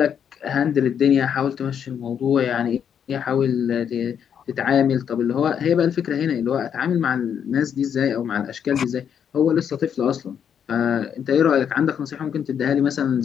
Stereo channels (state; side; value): quieter; right; 8.2 dB